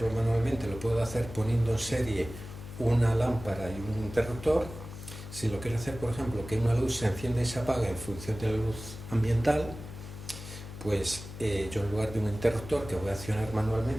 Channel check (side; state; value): left; noise; hum, 13 dB below the sound